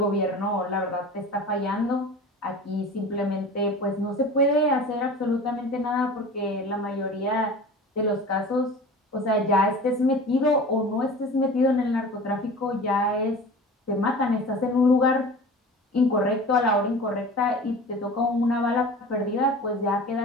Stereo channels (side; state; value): both; normal; correlation 0.37